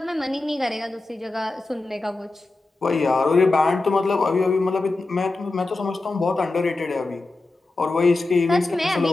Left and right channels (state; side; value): quieter; right; 3.2 dB